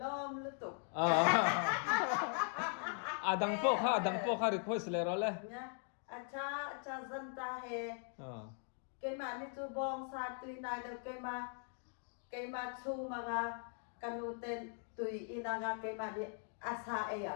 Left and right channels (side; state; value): right; silent; 51 dB below the other